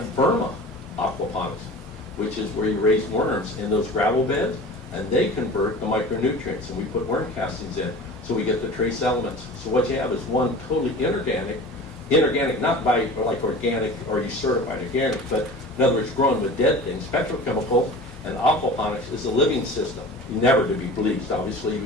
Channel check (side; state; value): both; normal; correlation 0.38